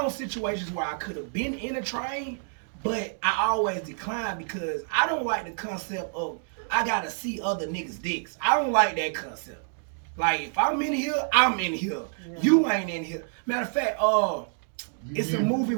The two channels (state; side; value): silent; left; 60 dB below the other